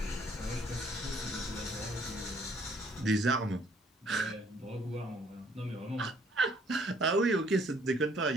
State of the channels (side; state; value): both; normal; correlation 0.63